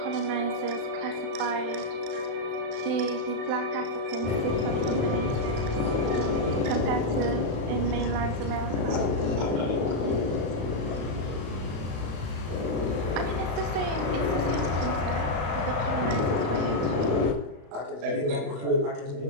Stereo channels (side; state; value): left; late; 35 ms